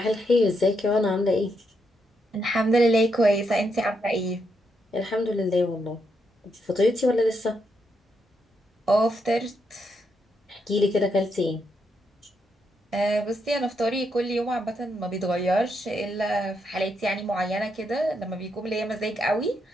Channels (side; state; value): both; normal; correlation 0.80